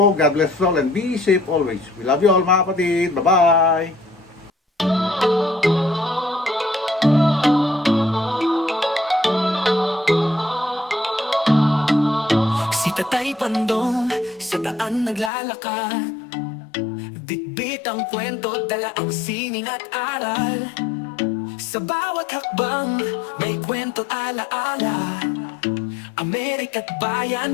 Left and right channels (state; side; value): drops out; right; at 15.3 s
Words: God bless us all and be safe always. We love you all mga kapatid. Bye-bye! Si Tatay Pandong sa daan naglalakad, bitbit ang kwento, dala ang sining at aral. Sa bawat hakbang may kwento alaala, Amerika't